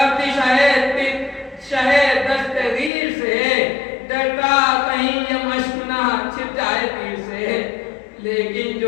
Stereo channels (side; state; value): right; drops out; at 2.9 s